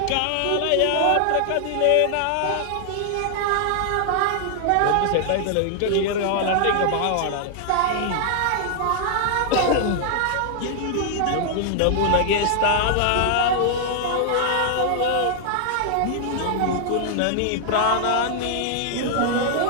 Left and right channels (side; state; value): both; different; correlation 0.00